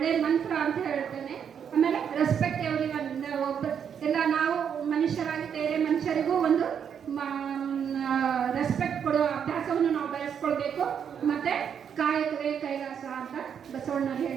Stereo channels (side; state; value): left; quieter; 7.9 dB